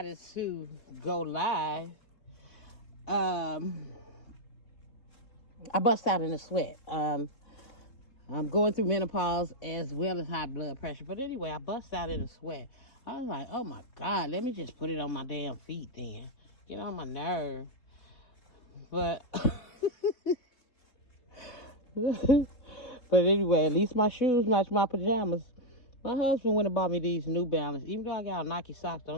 to go live, um, I bust out in a sweat. I'm going through menopause as well as high blood pressure. But anyway, I bust out in a sweat. I was like, oh my God, let me just put it on my damn feet then. Get on my nerve. But but anyway, at least my shoes match my pajamas. My husband went and bought me these New Balance. Even though I got Nike socks,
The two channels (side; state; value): right; late; 3.8 ms